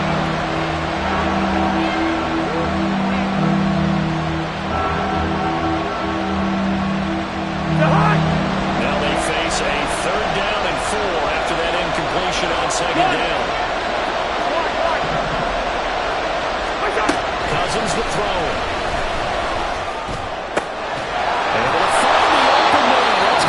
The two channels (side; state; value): both; identical; correlation 1.00